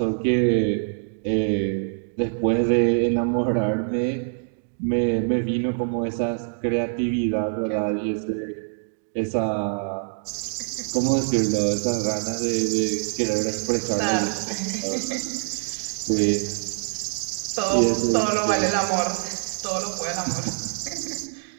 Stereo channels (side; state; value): left; silent; digital silence